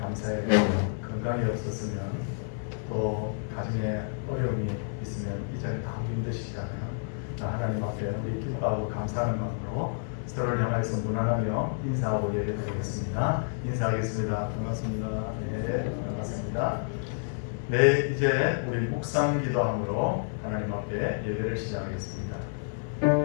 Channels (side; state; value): right; silent; 58 dB below the other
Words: 감사해 건강이 없었으면 또 가정에 어려움이 있으면 이 자리에 다 힘드시잖아요. 하나님 앞에 우리 기뻐하고 감사하는 마음으로 서로를 향해서 무난하며 인사하고 예배드리겠습니다. 인사하겠습니다. 반갑습니다. 네, 반갑습니다. 네, 이제 우리 묵상 기도함으로 하나님 앞에 예배를 시작하겠습니다.